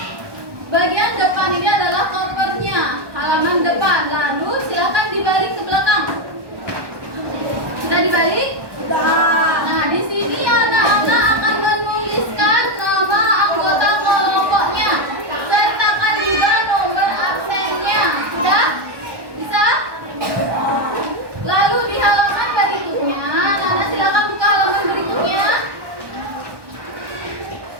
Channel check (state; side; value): late; left; 1.2 ms